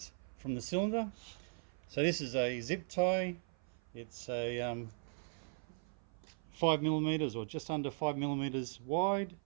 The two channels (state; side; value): silent; left; 52 dB below the other